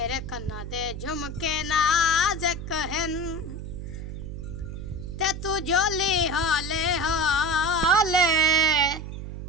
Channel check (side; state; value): right; noise; hum, 8 dB below the sound